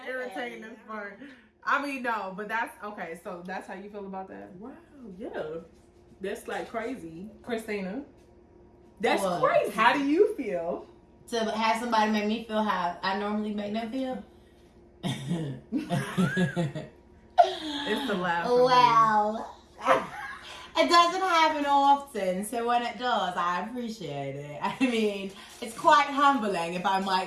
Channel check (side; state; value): both; identical; correlation 1.00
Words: irritating as fuck. I mean, no, but that's okay. So that's how you feel about that, Wow, yeah. That's like crazy. Christina? That's What? crazy. How do you feel? to have somebody make me feel how I normally make them feel. It's the laugh. Well, it doesn't happen often, so when it does, I appreciate it. I mean, it's quite humbling, if I